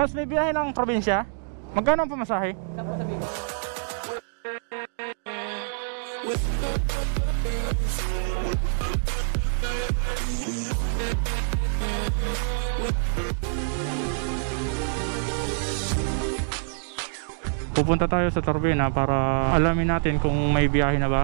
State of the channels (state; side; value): silent; left; 61 dB below the other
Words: may biyahe ng probinsya? Magkano ang pamasahe? Saan po sabihin? Pupunta tayo sa Turbina para alamin natin kung may biyahe na